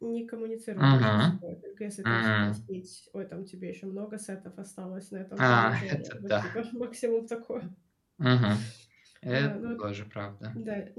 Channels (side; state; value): both; identical; correlation 1.00